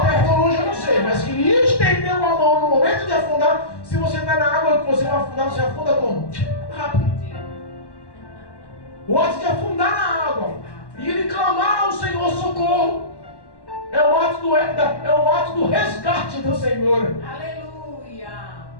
perto ou longe eu não sei, mas que estendeu a mão no momento de afundar. Se você está na água que você vai afundar, você afunda como? Rápido. O ato de afundar na água e ele clamar ao Senhor socorro é o ato do resgate do Senhor. Aleluia.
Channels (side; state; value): right; late; 1.1 ms